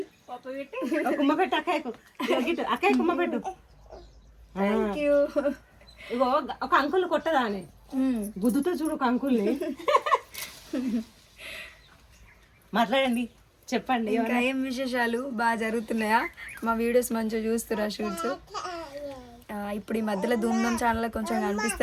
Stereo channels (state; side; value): identical; both; correlation 1.00